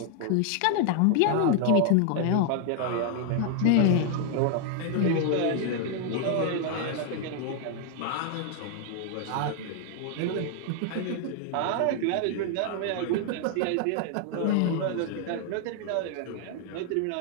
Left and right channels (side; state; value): both; different; correlation 0.00